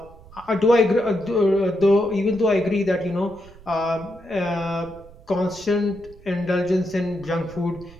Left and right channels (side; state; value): right; noise; rumble, 21 dB below the sound